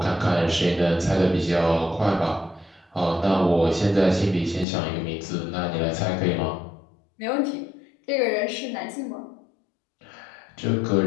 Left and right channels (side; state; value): right; drops out; at 4.7 s